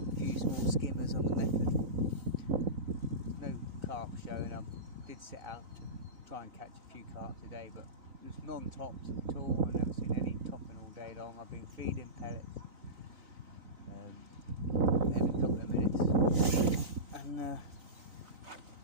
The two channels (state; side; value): late; left; 3.9 ms